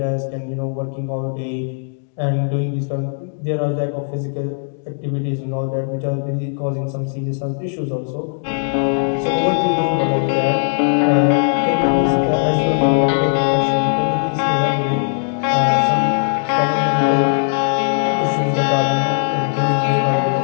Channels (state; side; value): silent; right; 67 dB below the other